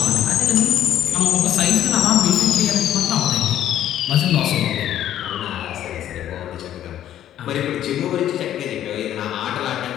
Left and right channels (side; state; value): right; quieter; 11.5 dB